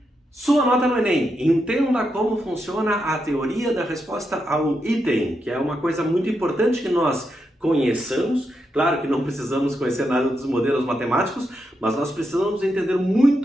sua nota no Enem. Entenda como funciona a teoria da resposta ao item, que é uma coisa muito importante que nós conheçamos. Claro que não precisamos conhecer nada dos modelos matemáticos, mas nós precisamos entender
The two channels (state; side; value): normal; both; correlation 0.84